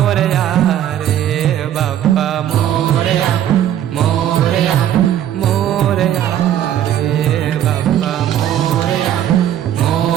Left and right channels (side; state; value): left; quieter; 11.0 dB